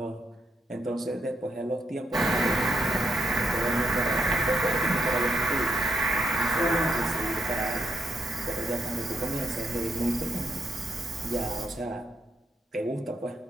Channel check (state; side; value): normal; both; correlation 0.78